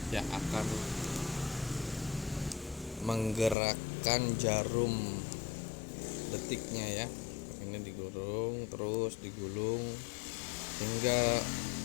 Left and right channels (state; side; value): drops out; right; at 3.6 s